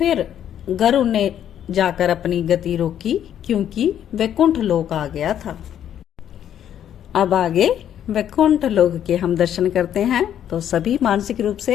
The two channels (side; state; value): right; quieter; 10.1 dB